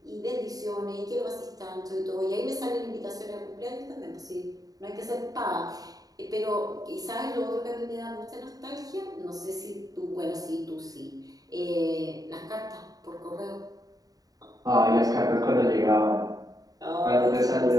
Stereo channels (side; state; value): left; late; 0.18 ms